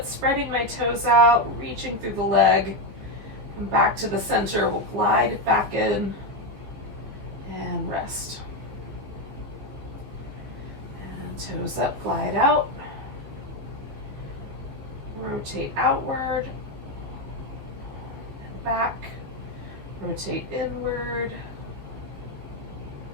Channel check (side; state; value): left; late; 15 ms